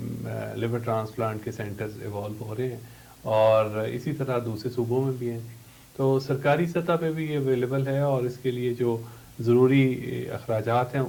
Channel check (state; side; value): identical; both; correlation 1.00